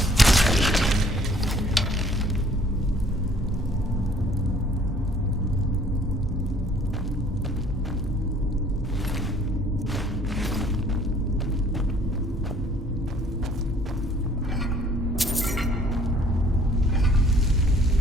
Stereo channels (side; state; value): both; normal; correlation 0.58